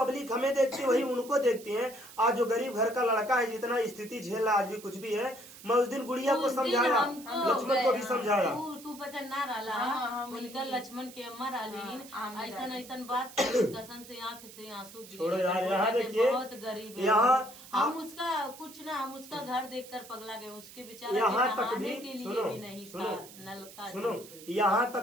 हमें देखती है, वही उनको देखती है। आज जो गरीब घर का लड़का है, जितना स्थिति झेल रहा, आज भी कुछ भी है, मैं उस दिन गुड़िया को समझाया, लक्ष्मण को भी समझाया। तू पता ना रहा उनका लक्ष्मण के अम्मा रालीन ऐसा ऐसा बात कसम से आंख से आंसू छोड़ो यार। यहाँ देखिए, बहुत गरीब है, यहाँ हम उसका कुछ ना, हम उसका घर देखकर पगला गए, उसके बेचारे यहाँ तक भी के लिए भी नहीं था नल का। सुनो, यहाँ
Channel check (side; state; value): right; noise; hiss, 17 dB below the sound